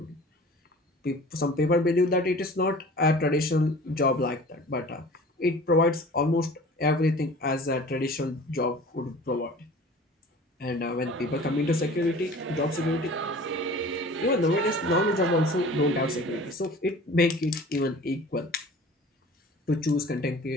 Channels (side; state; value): both; normal; correlation 0.43